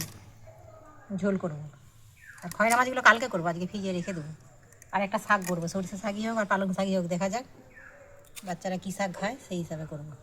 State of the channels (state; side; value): identical; both; correlation 1.00